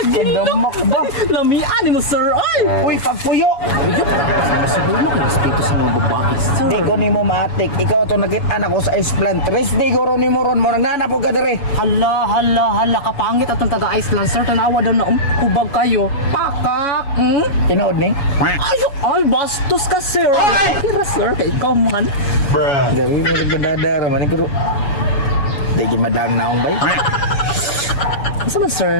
Damak ba? Lamian ni mo, sir. Ay! Uy, pagpuyo. Siguro mo kung respeto sa mga babae, sir. Di ko ni mo matik. Ikaw to nakita ko sa esplan. Tres di ko ron ni mo ron. Mo nananapog ka dire. Hala, kapangit at ang taga-Iceland, sir. Tanawa daw na, hubag kayo. Pakak! Tinood ni? Ay, bastos ka, sir. Kira, sir, kay ikaw man. Dari mo nagdadara man ko. Di gimadang naong bay. Asa man,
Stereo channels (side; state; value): right; late; 7.1 ms